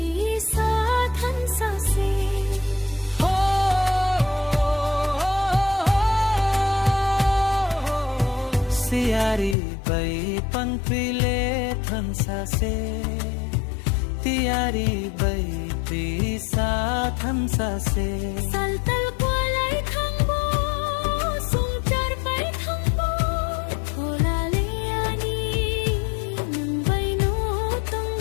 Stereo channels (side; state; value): right; drops out; at 9.6 s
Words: Siari bai panpile thansa se tiari bai pisa thansa se saltal kwalai thangbo sungchar bai thangbo thola le ani nang bai no tong